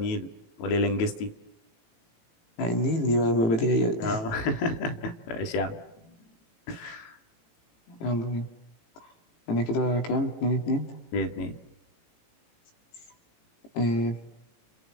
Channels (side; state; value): right; late; 18 ms